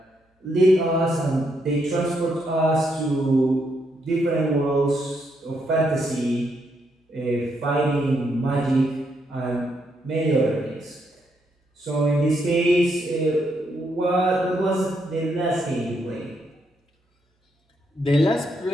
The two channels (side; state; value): both; normal; correlation 0.77